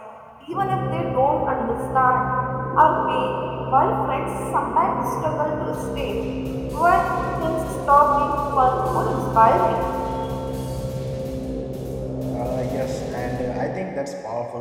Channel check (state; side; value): identical; both; correlation 1.00